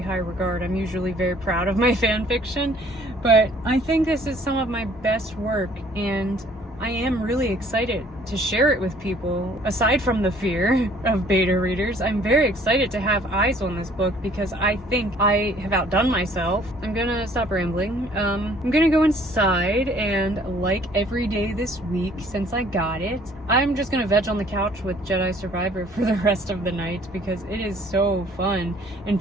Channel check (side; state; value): both; normal; correlation 0.57